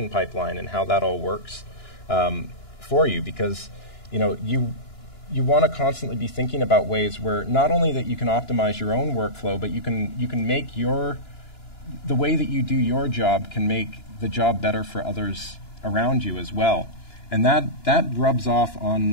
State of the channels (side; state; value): right; late; 2.9 ms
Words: pipeline and how that all works for you, because you want to constantly be thinking about ways where not only that you can optimize your own workflow, but you can make the way that you do your job can make the job better for others around you as well. And that rubs off